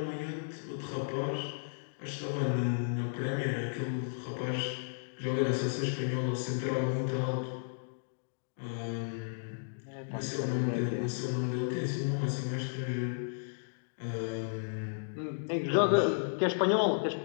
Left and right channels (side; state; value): right; silent; digital silence